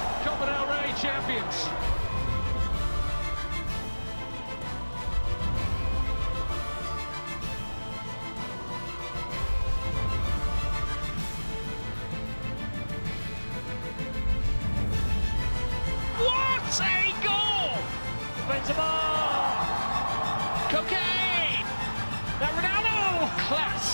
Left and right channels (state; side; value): inverted; both; correlation -1.00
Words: Copa del Rey champions. What a goal! Benzema! Cocaine! That Ronaldo!